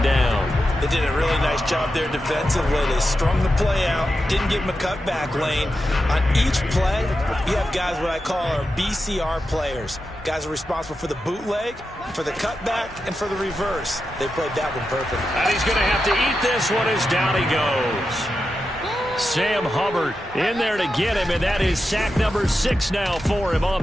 down. They did a really nice job there defensively. They strung the play out, didn't give him a cutback lane. On each play, you have guys what I call our BCR players. Guys are responsible for the bootleg, for the cutback, and for the reverse. They played that one perfect. And he's going to have to eat this one as down he goes. Sam Hubbard in there to get him, and that is sack number 6 now for him on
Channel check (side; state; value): both; normal; correlation 0.89